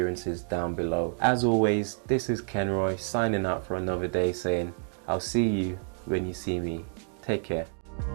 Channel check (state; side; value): silent; left; digital silence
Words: down below. As always, this is Kenroy signing out for another day, saying I'll see you when you see me. Take care.